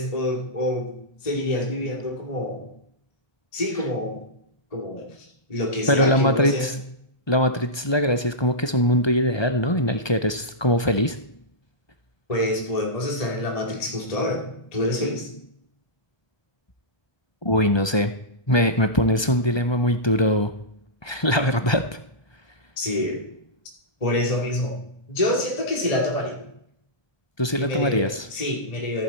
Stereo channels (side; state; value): right; late; 1.2 ms